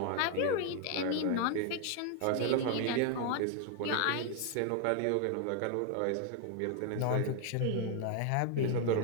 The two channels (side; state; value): both; different; correlation 0.00